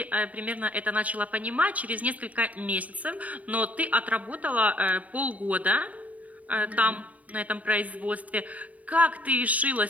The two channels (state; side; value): late; left; 0.071 ms